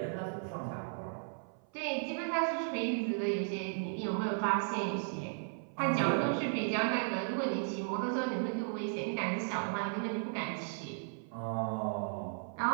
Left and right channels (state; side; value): silent; left; 54 dB below the other